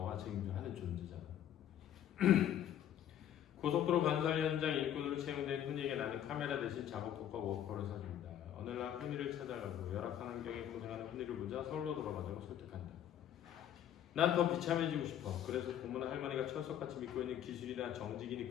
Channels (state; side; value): quieter; right; 10.6 dB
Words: 하는 존재잖아. 고속도로 건설 현장 일꾼으로 채용된 훈이에게 나는 카메라 대신 작업복과 워커를 사줍니다. 어느 날 훈이를 찾아가고 열악한 환경에 고생하는 훈이를 보자 서울로 돌아가자고 설득한다. 난 더 비참해지고 싶어. 그래서 고모나 할머니가 철석같이 믿고 있는 기술이나 정직이니